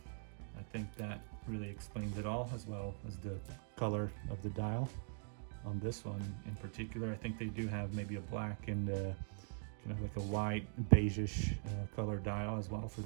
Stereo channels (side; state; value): left; silent; digital silence